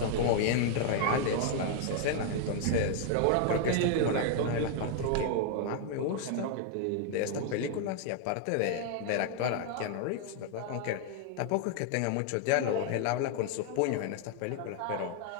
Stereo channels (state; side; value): different; both; correlation 0.00